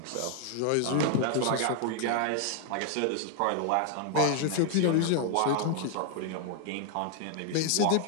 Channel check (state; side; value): different; both; correlation 0.00